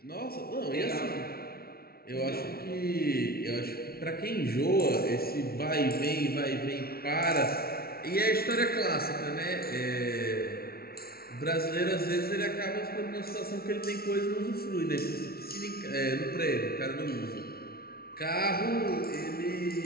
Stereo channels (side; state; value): right; late; 0.44 ms